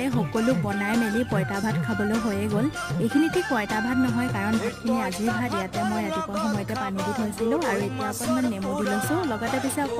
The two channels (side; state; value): both; identical; correlation 1.00